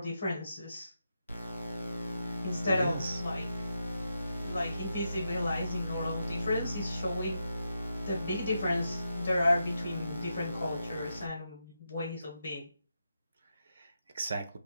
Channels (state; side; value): inverted; both; correlation -0.86